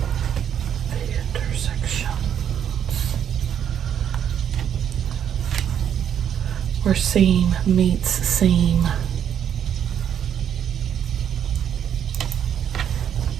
Where seam meets seam.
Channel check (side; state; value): left; quieter; 9.1 dB